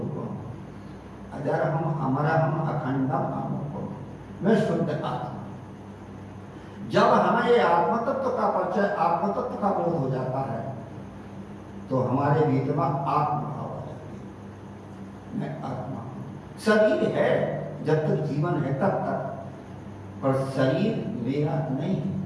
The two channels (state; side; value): identical; both; correlation 1.00